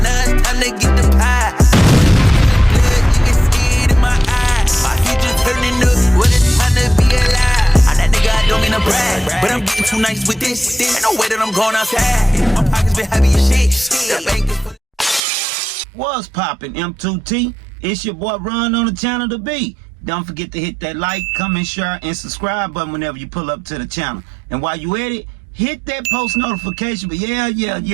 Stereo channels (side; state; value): left; drops out; at 15.2 s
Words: now it's time to get the pie. Blood, you can see it in my eyes. My future turning up, what it's time to be alive. I'm that nigga, I don't mean to brag, but I'm getting too nice with this. Ain't no way that I'm going outside. My pockets been heavy as shit. The bank is... What's poppin', M2T? It's your boy Run on the channel to be. Don't forget to hit that like, comment, share, and subscribe button whenever you pull up to the channel. And while you at it, hit that post notification. But yeah.